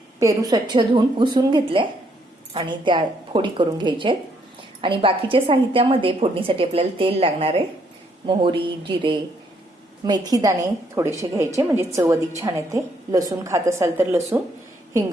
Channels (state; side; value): normal; both; correlation 0.71